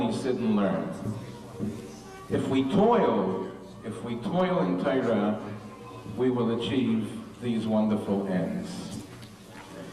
sit and learn, if we toil in Torah, we will achieve these wonderful ends.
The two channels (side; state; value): both; identical; correlation 1.00